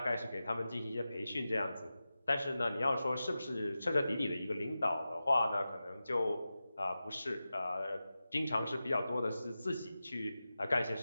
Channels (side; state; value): both; inverted; correlation -0.93